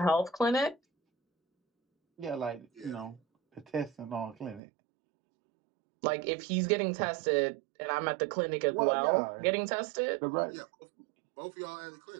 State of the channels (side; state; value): left; drops out; at 4.6 s